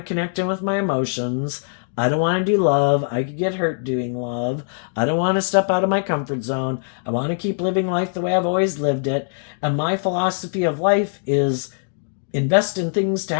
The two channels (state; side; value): silent; right; digital silence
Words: connect in with my emotions. I don't want to do love. I could get hurt doing love. I don't want to step out of my comfort zone. I want to keep living life the way I've always lived it. And my philosophy of life is invest in things to